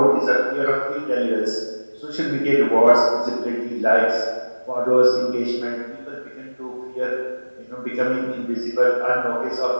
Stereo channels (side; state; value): both; inverted; correlation -1.00